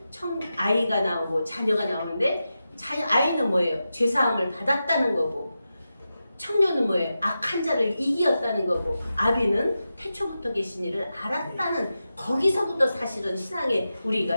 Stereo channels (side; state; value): both; inverted; correlation -0.91